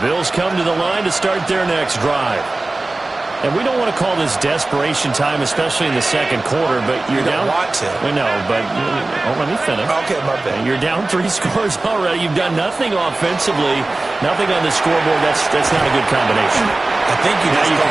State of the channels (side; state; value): left; quieter; 3.0 dB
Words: Bills come to the line to start their next drive. And we don't want to call this desperation time, especially in the second quarter, but you're down. You don't want to. I know, but let me finish. Okay, my bad. You're down 3 scores already. You've done nothing offensively, nothing on the scoreboard. That's not a good combination. I think you